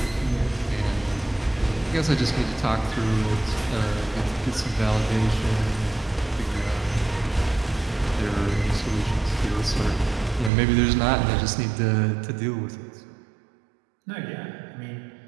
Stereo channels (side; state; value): left; drops out; at 10.5 s